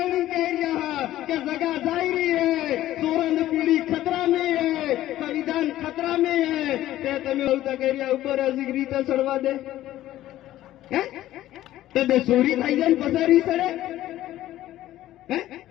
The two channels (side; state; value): right; quieter; 14.1 dB